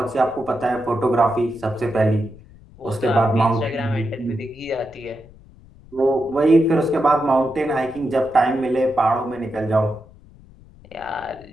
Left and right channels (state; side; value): noise; left; rumble, 23 dB below the sound